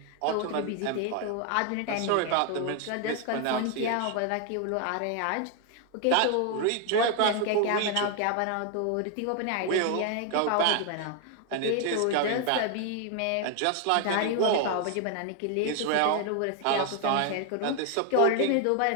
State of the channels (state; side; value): different; both; correlation 0.01